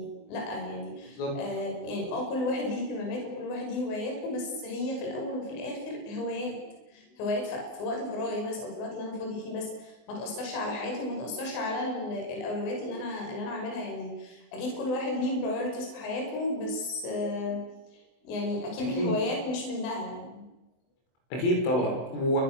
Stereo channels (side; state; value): right; late; 24 ms